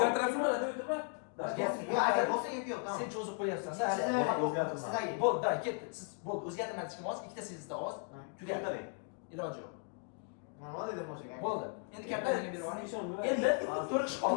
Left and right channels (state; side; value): quieter; right; 39.1 dB